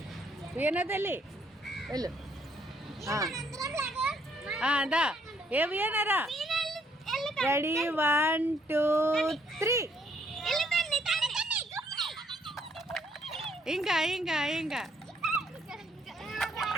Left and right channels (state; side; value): normal; both; correlation 0.68